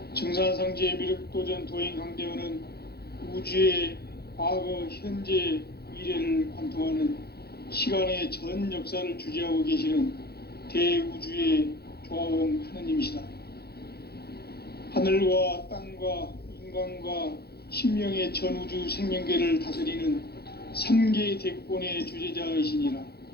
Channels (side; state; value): right; late; 0.46 ms